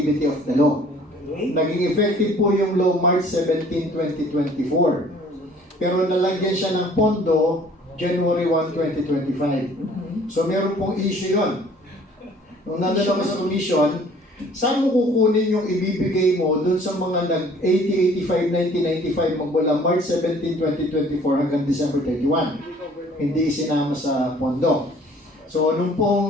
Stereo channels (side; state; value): both; normal; correlation 0.54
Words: of the law. Naging effective po yung law March 17, 2024. Pero nalagyan siya ng pondo January 1, 2025. So meron pong issue yun. Nung nandala ko sa commission, saan mo kukunin yung ibibigay mo dun sa mga nag-80, 85, 90, 95 magmula March 17, 2024 hanggang December 31? Hindi isinama sa pondo. So, nung